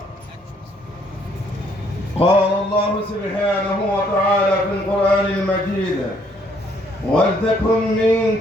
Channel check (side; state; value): both; normal; correlation 0.66